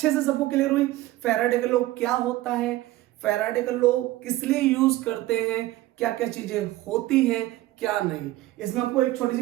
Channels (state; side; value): quieter; left; 16.7 dB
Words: से सबको क्लियर हुई। फैराडे का लॉ क्या होता है, फैराडे का लॉ किस लिए यूज करते हैं, क्या क्या चीजें होती हैं, क्या नहीं। इसमें आपको एक छोटी सी